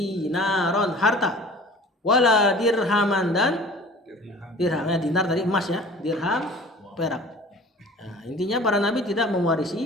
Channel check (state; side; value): normal; both; correlation 0.45